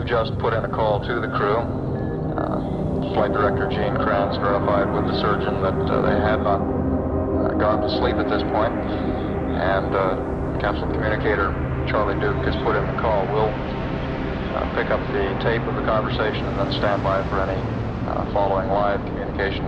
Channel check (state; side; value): identical; both; correlation 1.00